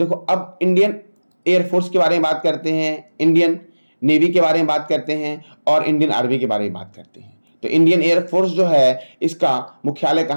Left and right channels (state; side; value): inverted; both; correlation -1.00